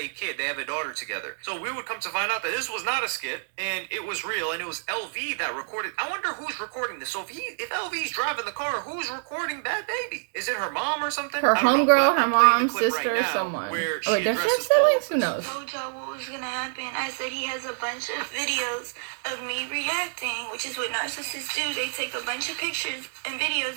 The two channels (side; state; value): left; silent; digital silence